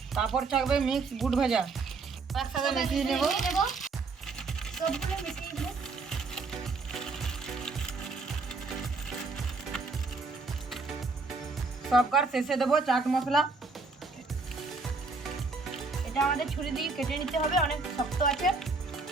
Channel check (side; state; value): left; quieter; 4.0 dB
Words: তারপর থাকবে মিক্স বুট ভাজা। একসাথে মিশিয়ে নেব। সবগুলো মিশিয়ে দেব। সবকার শেষে দেবো চাট মশলা। এটা আমাদের ছুরি দিয়ে কেটে নিতে হবে, অনেক শক্ত আছে।